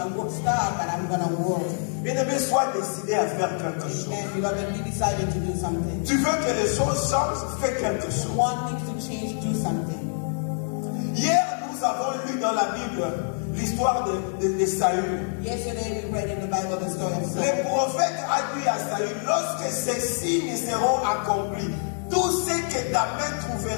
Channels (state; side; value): silent; right; 61 dB below the other